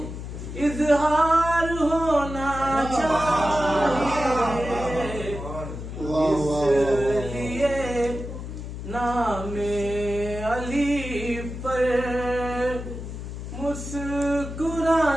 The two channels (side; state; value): left; noise; hum, 8 dB below the sound